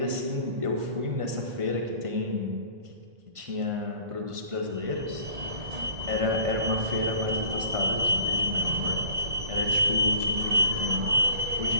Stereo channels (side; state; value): left; late; 1.5 ms